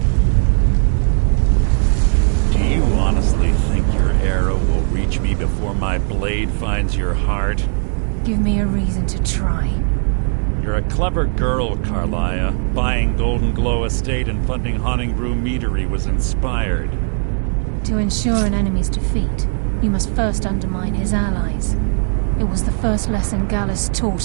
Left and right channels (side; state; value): left; silent; 66 dB below the other